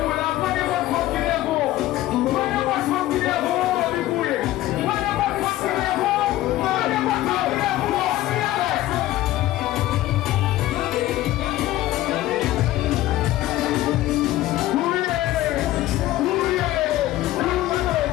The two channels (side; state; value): right; quieter; 15.4 dB